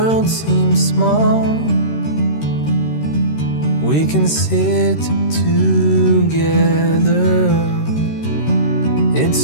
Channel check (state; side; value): late; right; 13 ms